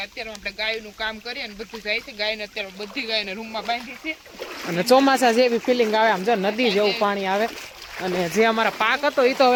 અત્યારે આપણે ગાયનું કામ કરીએ અને બધું જાય છે. ગાયને અત્યારે બધી ગાયને રૂમમાં બાંધી છે અને ચોમાસા જેવી ફિલિંગ આવે, આમ જો નદી જેવું પાણી આવે. અને જે અમારા પાક હતો એ તો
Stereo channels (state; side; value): identical; both; correlation 1.00